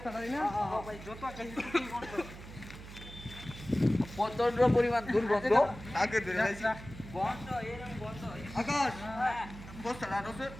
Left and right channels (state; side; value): noise; right; hum, 14 dB below the sound